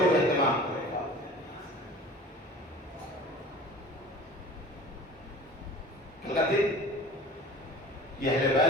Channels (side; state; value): both; normal; correlation 0.42